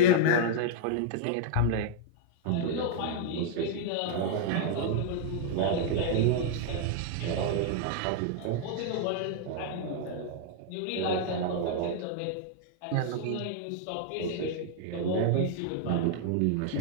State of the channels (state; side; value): different; both; correlation -0.01